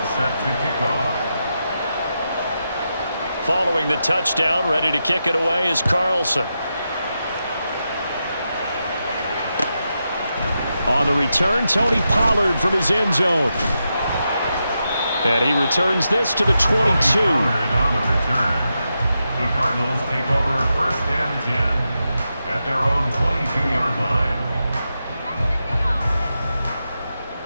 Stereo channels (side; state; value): both; inverted; correlation -0.87